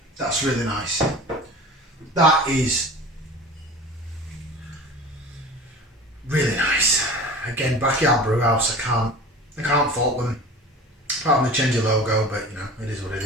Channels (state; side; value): normal; both; correlation 0.38